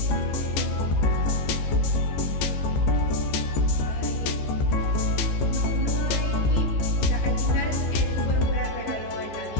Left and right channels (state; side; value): late; right; 15 ms